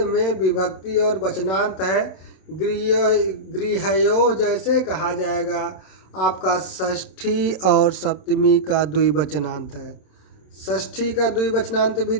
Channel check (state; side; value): late; right; 27 ms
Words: में विभक्ति और वचनांत है। गृहयोः जैसे कहा जाएगा आपका षष्ठी और सप्तमी का द्विवचनांत है। षष्ठी का द्विवचनांत भी